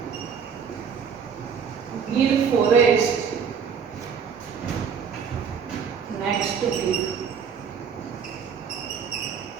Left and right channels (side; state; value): left; quieter; 6.7 dB